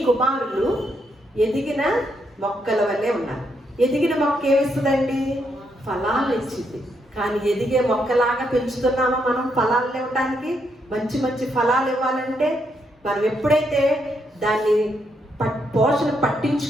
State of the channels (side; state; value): both; normal; correlation 0.78